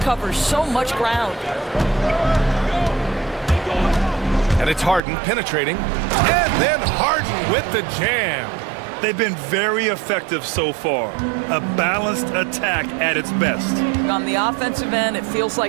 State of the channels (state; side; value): drops out; left; at 5.0 s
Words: covers so much ground. And it's Harden penetrating. And then Harden with the jam. They've been very effective so far. A balanced attack at its best. On the offensive end, it feels